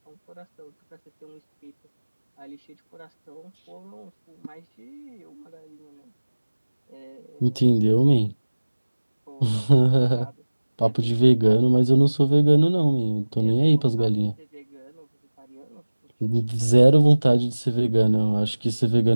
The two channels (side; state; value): both; inverted; correlation -1.00